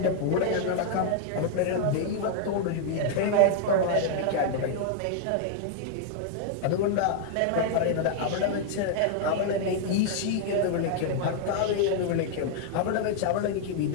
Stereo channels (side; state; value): both; different; correlation -0.01